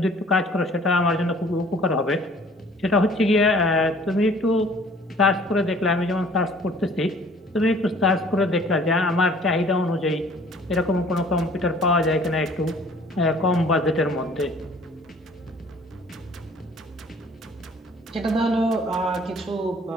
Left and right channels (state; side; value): normal; both; correlation 0.53